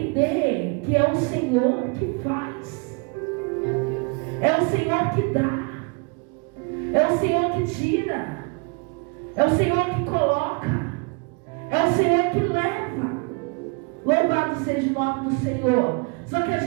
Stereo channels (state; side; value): quieter; left; 31.6 dB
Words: que é o Senhor que faz, é o Senhor que dá, é o Senhor que tira, é o Senhor que coloca, é o Senhor que leva. Louvado seja o nome do Senhor. Só que a